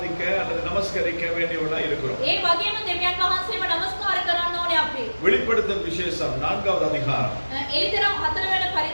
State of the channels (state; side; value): inverted; both; correlation -1.00